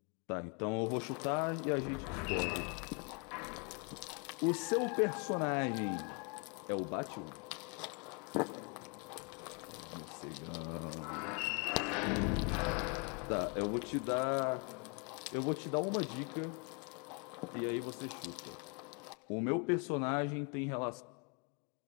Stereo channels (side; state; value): right; quieter; 34.0 dB